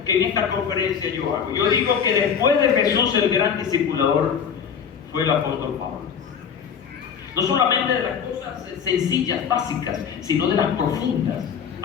que en esta conferencia yo hago. Yo digo que después de Jesús, el gran discipulador fue el apóstol Pablo. No solamente de las cosas sencillas, básicas, sino de las profundas.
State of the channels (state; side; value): quieter; right; 7.3 dB